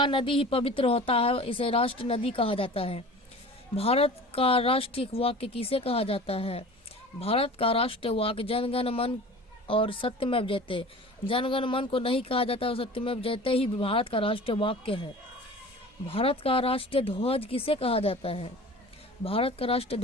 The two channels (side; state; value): both; normal; correlation 0.40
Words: नदी ही पवित्र होता है, इसे राष्ट्रीय नदी कहा जाता है। भारत का राष्ट्रीय वाक्य किसे कहा जाता है? भारत का राष्ट्रीय वाक्य जनगण मन और सत्यमेव जयते। जनगण मन को नहीं कहा जाता और सत्यमेव जयते ही भारत का राष्ट्रीय वाक्य है। भारत का राष्ट्रीय ध्वज किसे कहा जाता है? भारत का राष्ट्रीय